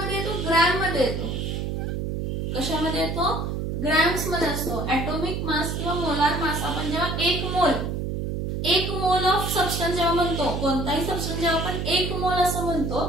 येतो ग्रॅम मध्ये येतो. कशामध्ये येतो ग्रॅम्स मध्ये असतो. ॲटॉमिक मास किंवा मोलार मास आपण जेव्हा 1 मोल ऑफ सबस्टन्स जेव्हा म्हणतो, कोणताही सबस्टन्स जेव्हा आपण 1 मोल असं म्हणतो,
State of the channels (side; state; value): right; noise; hum, 2 dB below the sound